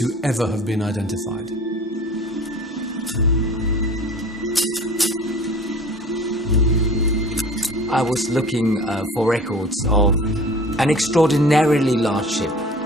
ever have been identified. I was looking for records of an extraordinarily large ship.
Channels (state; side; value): normal; both; correlation 0.44